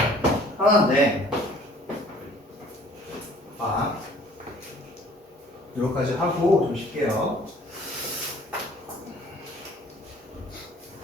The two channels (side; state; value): both; normal; correlation 0.54